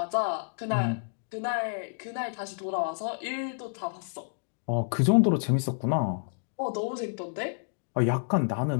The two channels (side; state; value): right; silent; digital silence